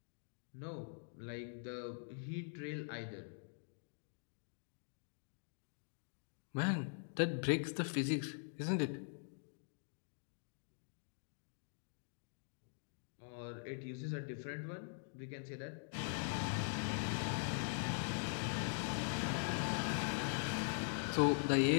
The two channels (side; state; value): right; silent; digital silence